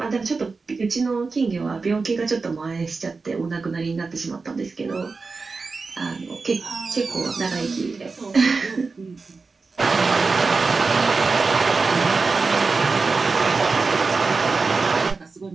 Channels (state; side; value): quieter; left; 4.3 dB